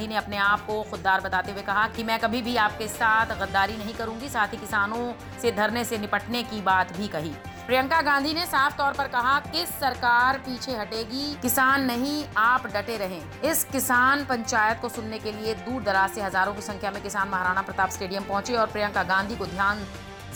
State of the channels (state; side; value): identical; both; correlation 1.00